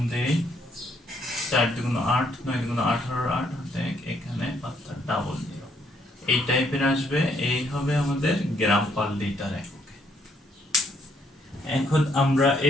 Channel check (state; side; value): normal; both; correlation 0.70